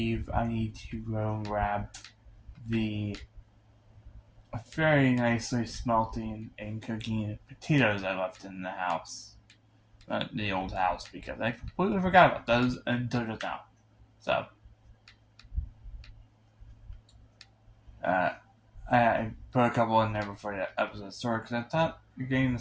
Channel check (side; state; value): both; identical; correlation 1.00